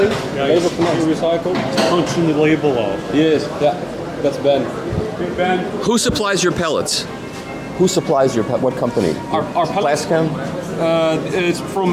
Yeah, label cannot be recycled. Punching the label off. Yes, yeah. That's Ben. Good Ben. Who supplies your pellets? Who supplies your what company? Our pellets. Plascam? It's from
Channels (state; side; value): identical; both; correlation 1.00